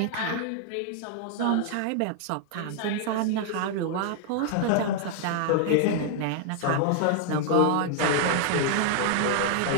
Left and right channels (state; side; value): different; both; correlation 0.00